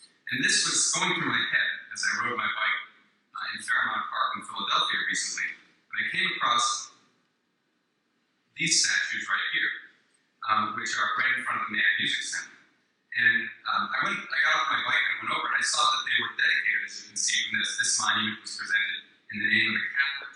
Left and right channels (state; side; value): identical; both; correlation 1.00